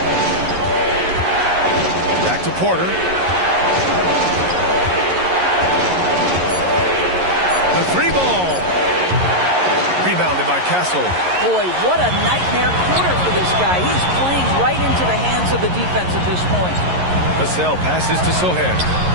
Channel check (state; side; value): late; left; 11 ms